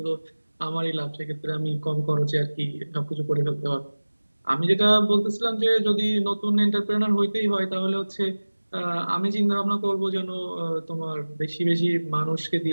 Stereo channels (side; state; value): both; inverted; correlation -1.00